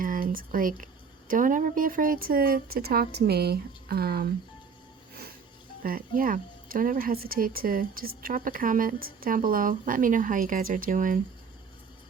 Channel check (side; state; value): left; quieter; 5.8 dB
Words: like, don't ever be afraid to talk to me. But yeah, don't ever hesitate to just drop a comment down below. Let me know how you guys are doing.